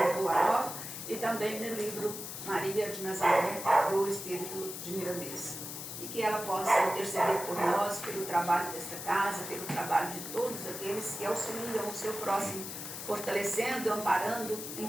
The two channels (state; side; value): noise; left; hiss, 8 dB below the sound